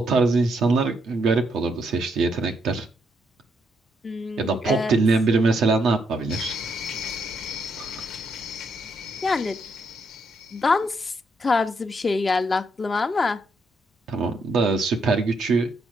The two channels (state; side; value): normal; both; correlation 0.76